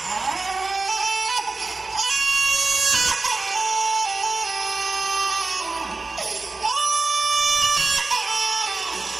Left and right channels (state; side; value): quieter; left; 3.7 dB